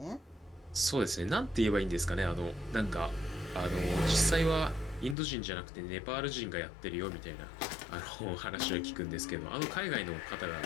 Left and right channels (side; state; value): right; drops out; at 5.2 s